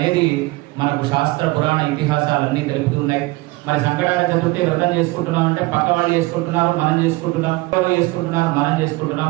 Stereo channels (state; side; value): quieter; left; 21.8 dB